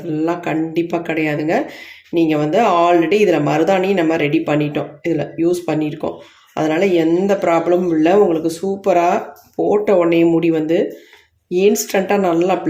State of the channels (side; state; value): both; identical; correlation 1.00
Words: கண்டிப்பாக கிடையாதுங்க. நீங்கள் வந்து ஆல்ரெடி இதில் மருதாணி நம்ம ரெடி பண்ணிட்டோம், இதில் யூஸ் பண்ணியிருக்கோம். அதனால் எந்த ப்ராப்ளமும் இல்லை. உங்களுக்கு சூப்பராக போட்ட உடனே முடி வந்து இன்ஸ்டண்ட்டாக நல்லா